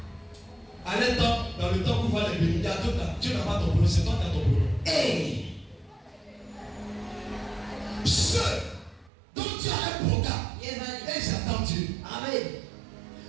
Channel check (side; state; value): left; drops out; at 9.1 s